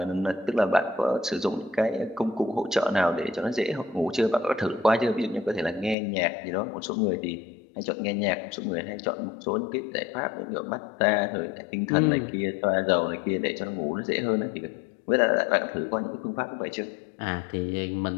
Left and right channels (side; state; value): right; drops out; at 6.0 s